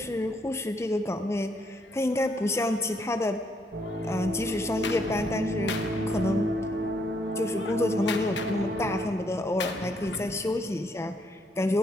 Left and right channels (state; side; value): normal; both; correlation 0.72